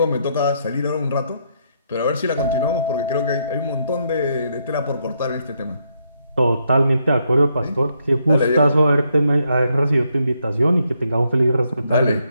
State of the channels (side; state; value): both; inverted; correlation -0.76